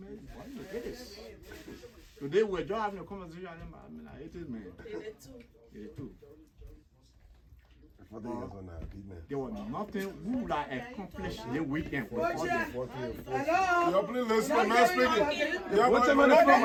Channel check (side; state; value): both; identical; correlation 1.00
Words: why do you get this? Today we're just having a conversation. I mean, I hate it, man. Yeah, too. There was nothing we would have accomplished the weekend. You're please listen, I'm not speaking. What's the money from?